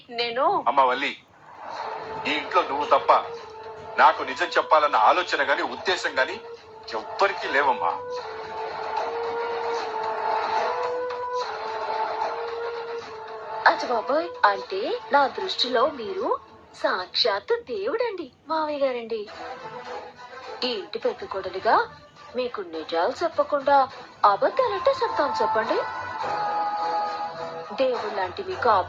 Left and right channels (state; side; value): identical; both; correlation 1.00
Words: నేను అమ్మ వల్లి, ఈ ఇంట్లో నువ్వు తప్ప నాకు నిజం చెప్పాలన్న ఆలోచన గాని ఉద్దేశం గాని ఎవ్వరికీ లేవమ్మా. అచ్చ బాబోయ్, అంటే నా దృష్టిలో మీరు సాక్షాత్తు దేవుడండి మావయ్య గారండి. ఈ ఇంటి పెద్ద కొడలిగా మీకు నిజాలు చెప్పకుండా అబద్ధాలంటే చెప్తాను చెప్పండి. దేవుడు లాంటి మీకు